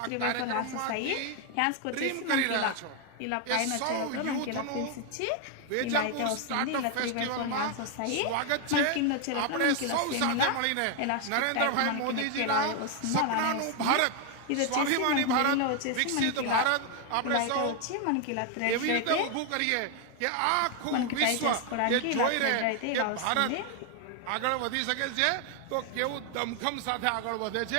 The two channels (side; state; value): both; different; correlation 0.01